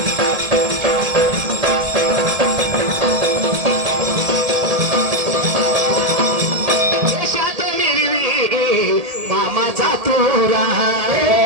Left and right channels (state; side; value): late; left; 1.8 ms